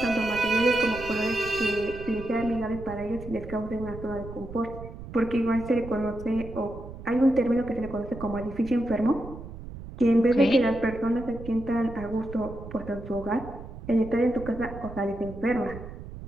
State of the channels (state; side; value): noise; right; rumble, 12 dB below the sound